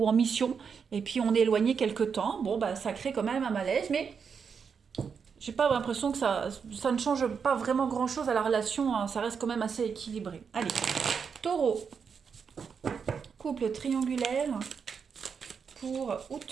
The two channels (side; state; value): left; quieter; 6.3 dB